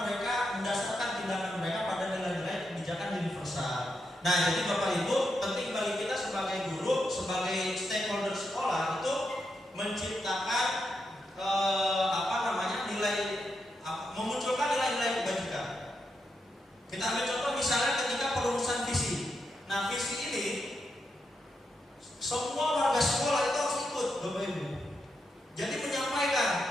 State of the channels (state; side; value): normal; both; correlation 0.84